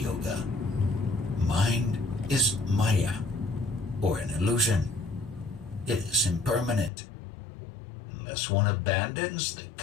Yoga. Mind is Maya, or an illusion. It is impermanent. Unless one abandons the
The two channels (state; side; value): drops out; right; at 6.9 s